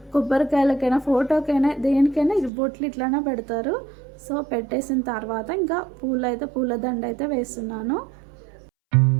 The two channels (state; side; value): drops out; left; at 2.5 s